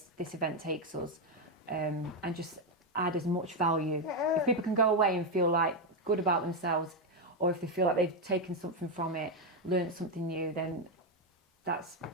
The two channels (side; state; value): both; normal; correlation 0.05